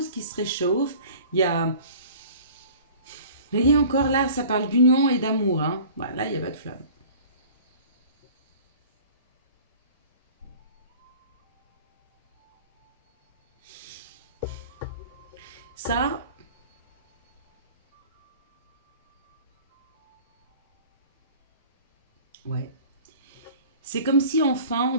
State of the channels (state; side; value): inverted; both; correlation -0.45